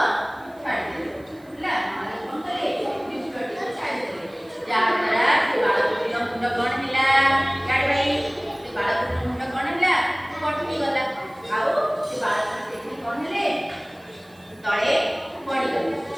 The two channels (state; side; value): noise; right; hiss, 30 dB below the sound